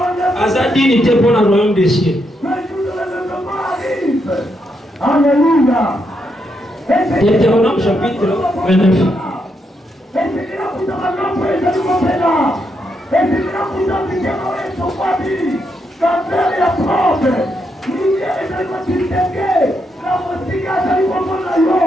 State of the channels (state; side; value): normal; both; correlation 0.80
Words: Azadini était pour le royaume des cieux. Deutéronome chapitre 29.